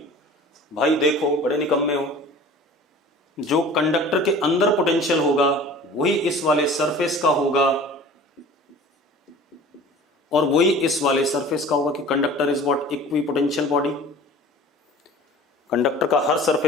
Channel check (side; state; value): both; normal; correlation 0.44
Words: भाई देखो, बड़े निकम्मे हो, जो कंडक्टर के अंदर पोटेंशियल होगा वही इस वाले सरफेस का होगा और वही इस वाले सरफेस का होगा कि conductor is what? Equipotential body. Conductor का हर